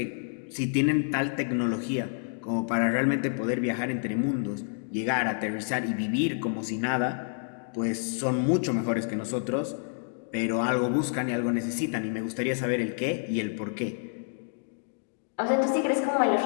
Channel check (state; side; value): silent; right; digital silence